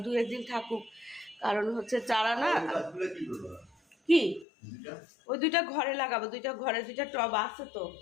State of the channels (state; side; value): drops out; right; at 4.5 s